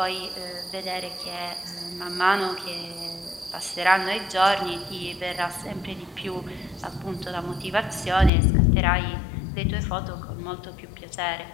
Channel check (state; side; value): drops out; right; at 8.3 s